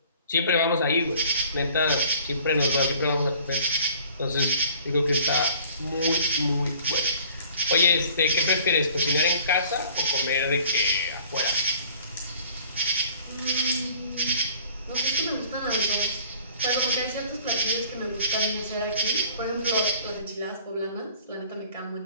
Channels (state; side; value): inverted; both; correlation -0.52